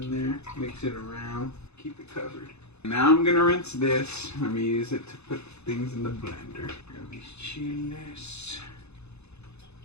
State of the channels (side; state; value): right; late; 0.81 ms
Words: there, mix it around, keep it covered. Now I'm gonna rinse this. Let me use it to put things in the blender. Grab these chiles.